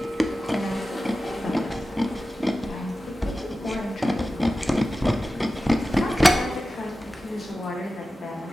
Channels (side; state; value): both; normal; correlation 0.94